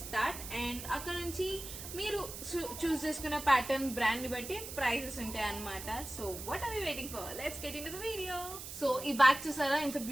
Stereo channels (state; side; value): noise; right; hiss, 10 dB below the sound